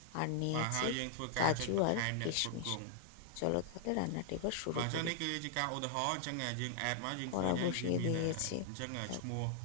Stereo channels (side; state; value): both; different; correlation -0.01